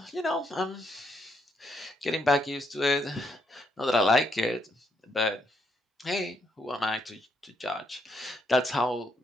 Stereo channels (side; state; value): both; normal; correlation 0.75